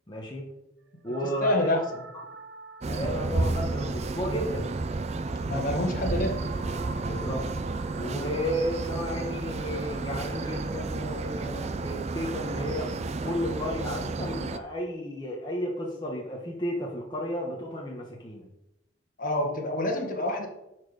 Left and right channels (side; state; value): both; normal; correlation 0.41